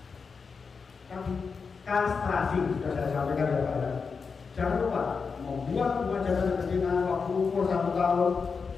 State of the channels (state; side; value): quieter; right; 5.2 dB